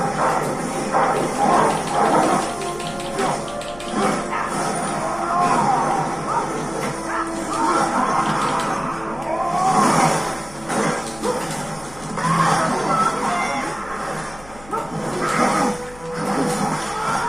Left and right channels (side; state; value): left; noise; hum, 20 dB below the sound